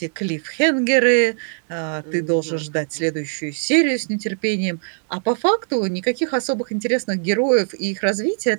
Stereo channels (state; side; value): silent; left; 65 dB below the other